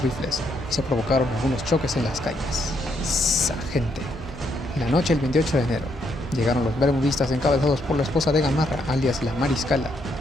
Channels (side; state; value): both; normal; correlation 0.75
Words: rifles, y se provocaron algunos choques en las calles. ¡Sa gente! La noche del 28 de enero, llegaron los bermudistas encabezados por la esposa de Gamarra, alias la Mariscala,